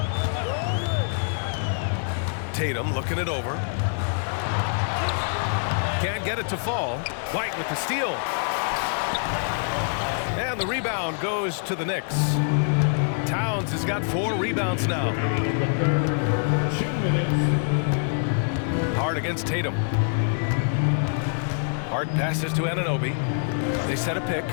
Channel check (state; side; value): silent; right; digital silence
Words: Tatum looking it over. Can't get it to fall. White with the steal. And the rebound goes to the Knicks. Towns has got 4 rebounds now. Hart against Tatum. Hart passes to Anunoby. They set a pick